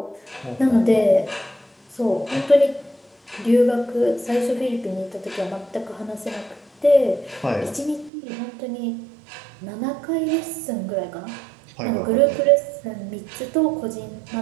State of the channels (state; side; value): drops out; left; at 8.1 s